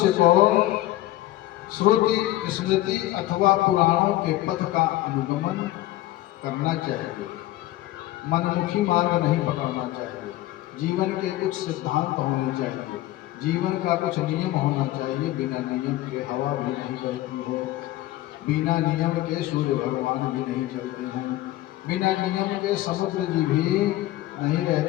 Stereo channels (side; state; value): right; quieter; 15.6 dB